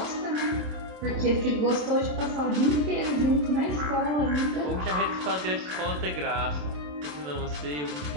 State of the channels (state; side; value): late; left; 27 ms